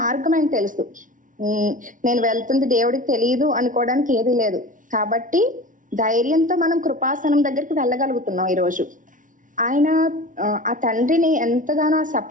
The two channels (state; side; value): late; left; 0.38 ms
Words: ఆయనకు తెలుసు. నేను వెళ్తుంది దేవుడికి తెలియదు అనుకోవడానికి ఏది లేదు. కాబట్టి ధైర్యంతో మనం కృపాసనం దగ్గరికి వెళ్ళగలుగుతున్నాం ఈరోజు. ఆయన ఆ తండ్రిని ఎంతగానో ఆ